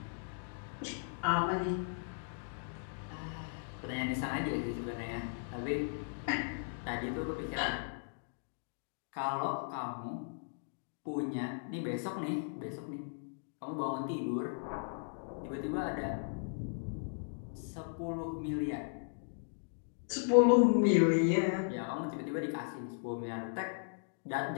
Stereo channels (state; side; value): silent; right; digital silence